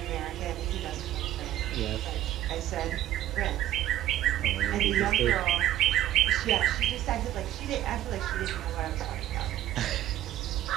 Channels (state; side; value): quieter; left; 12.9 dB